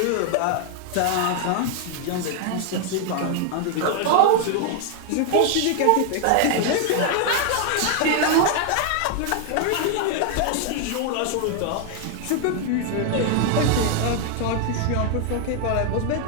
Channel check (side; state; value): both; different; correlation 0.00